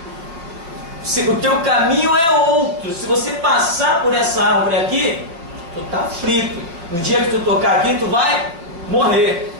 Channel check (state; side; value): late; left; 5.7 ms